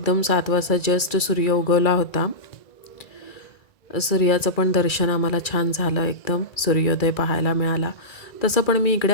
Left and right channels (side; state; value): right; late; 2.3 ms